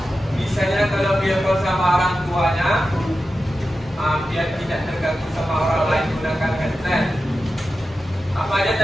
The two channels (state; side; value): normal; both; correlation 0.92